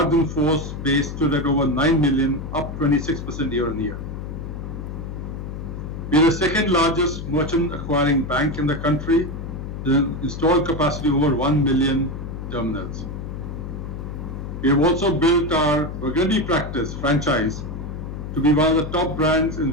in force base stood at over 9 million, up 26% year on year. We are the second largest merchant acquiring bank in the country, with an installed capacity over 1 million terminals. We have also built our Burgundy practice franchise to be one of the top brands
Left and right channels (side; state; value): left; noise; hum, 7 dB below the sound